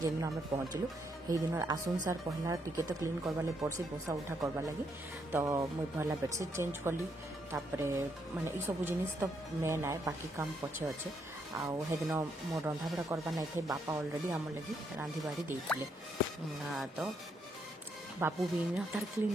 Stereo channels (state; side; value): normal; both; correlation 0.76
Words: जेन आमे पहुंचलु हेई दिनर आसुन सार पहला टिके तो क्लीन करबा ले पड़सी बोसा उठा करबा लगी तो मुई पहला बेडशीट चेंज कली तापरे माने ई सब जिनिस तो मेन आए बाकी काम पछे अच्छे आउ हेदिन मोर रंधा बड़ा करबा नहीं थे बापा ऑलरेडी आम लगी रांधी बाड़ी देइथिले तो बापू भी तार